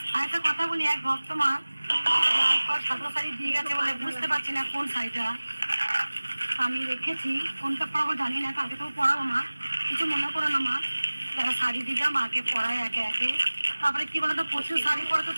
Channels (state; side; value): inverted; both; correlation -1.00